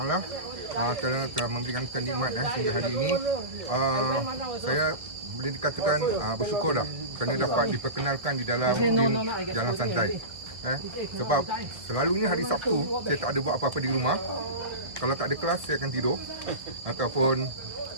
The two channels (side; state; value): left; late; 1.6 ms